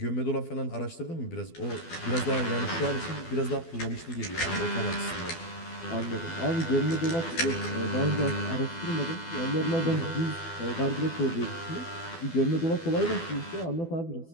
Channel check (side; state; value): right; late; 12 ms